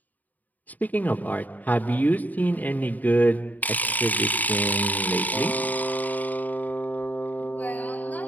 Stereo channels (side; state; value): right; late; 0.081 ms